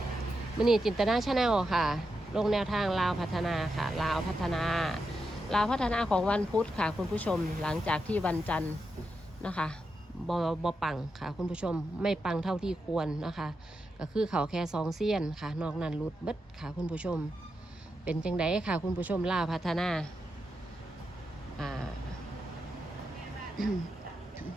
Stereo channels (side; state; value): both; normal; correlation 0.86